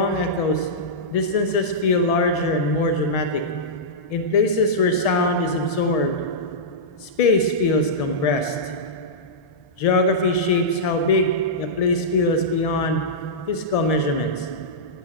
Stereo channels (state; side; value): late; right; 1.7 ms